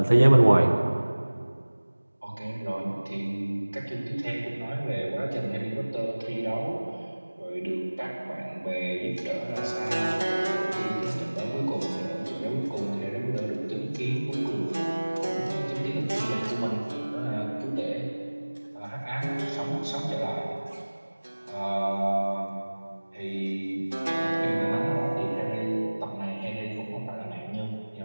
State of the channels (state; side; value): inverted; both; correlation -1.00